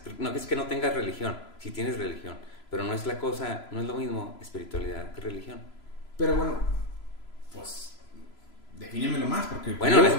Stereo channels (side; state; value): right; late; 3.0 ms